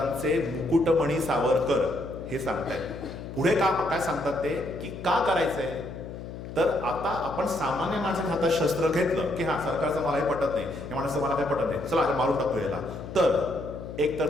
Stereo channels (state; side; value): noise; left; hum, 10 dB below the sound